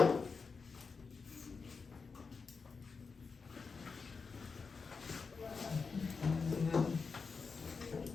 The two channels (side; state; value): right; quieter; 5.0 dB